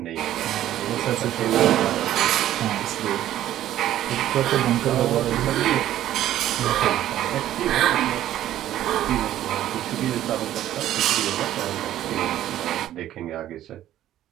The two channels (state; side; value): quieter; left; 12.7 dB